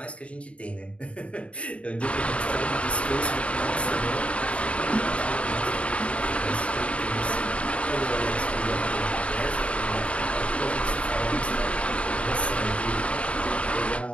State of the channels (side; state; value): right; late; 0.062 ms